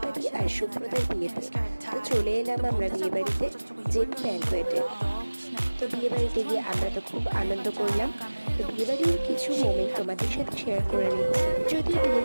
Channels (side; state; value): both; inverted; correlation -1.00